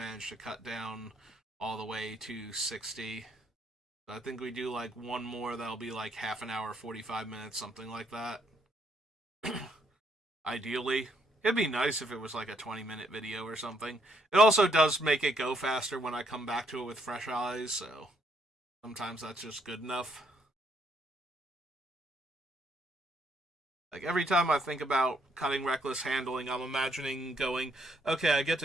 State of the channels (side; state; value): both; normal; correlation 0.72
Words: to cut down all the way to 60. So I think we do like one more that'll be like half an hour, 45 minutes, something like that. Ideally. It'd be nice if it was like a 20-minute video or something. It also does make it go faster when I come back to it with fresh eyes, so sometimes that's just good enough. Like, every time I think about cutting Reckless Handling, I'm imagining going, okay, I get